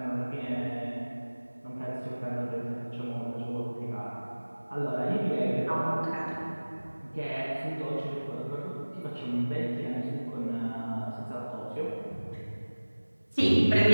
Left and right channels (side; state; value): both; inverted; correlation -1.00